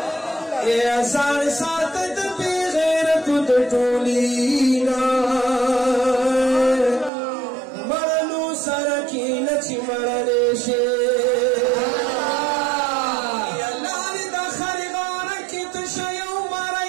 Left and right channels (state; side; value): drops out; left; at 7.1 s